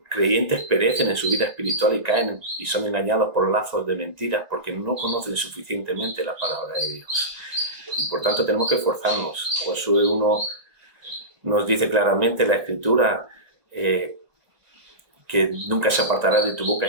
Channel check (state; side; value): late; left; 1.9 ms